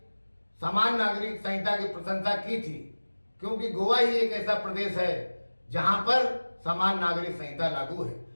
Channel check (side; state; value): both; inverted; correlation -1.00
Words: समान नागरिक संहिता की प्रशंसा की थी, क्योंकि गोवा ही एक ऐसा प्रदेश है जहां पर समान नागरिक संहिता लागू है।